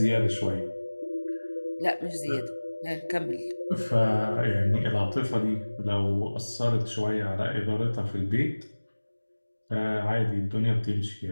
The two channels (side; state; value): both; inverted; correlation -1.00